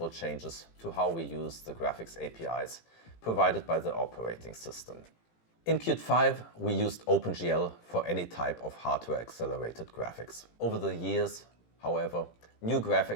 changes to how we use the graphics APIs provided by the operating system. In Qt 5, we used OpenGL for any type of hardware-accelerated graphics. Over the years, however, new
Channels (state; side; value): late; right; 18 ms